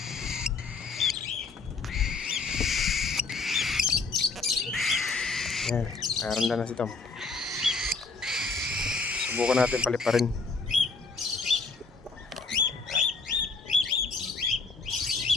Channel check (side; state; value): right; quieter; 4.2 dB